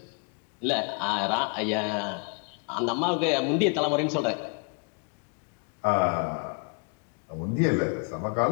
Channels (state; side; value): quieter; right; 36.6 dB